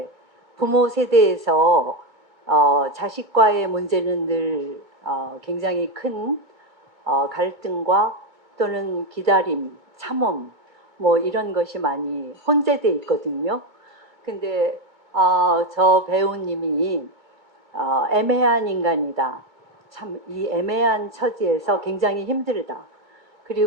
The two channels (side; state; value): left; late; 2.2 ms